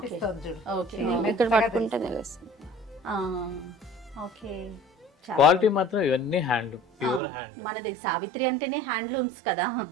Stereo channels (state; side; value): drops out; left; at 7.2 s